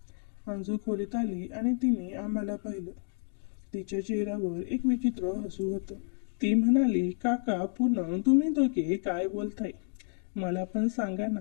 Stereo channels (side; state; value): right; silent; 57 dB below the other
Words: अंजू खोलीत आली आणि तिने आम्हाला पाहिलं. तिच्या चेहऱ्यावर एक विचित्र हसू होतं. ती म्हणाली, काका पूनम तुम्ही दोघे काय बोलताय? मला पण सांगा ना.